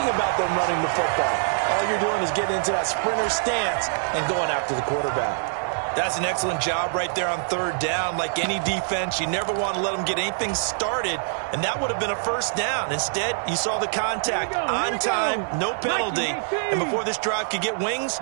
about them running the football. All you're doing is getting into that sprinter stance and going after the quarterback. That's an excellent job right there on third down. Like any defense, you never want to let them get anything started, and that would have been a first down. Instead, you saw the contact on time, no penalty, and before this drive could get wings,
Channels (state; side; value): silent; left; 62 dB below the other